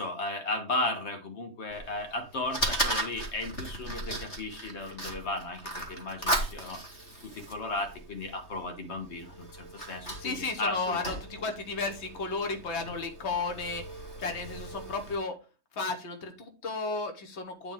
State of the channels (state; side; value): late; right; 3.2 ms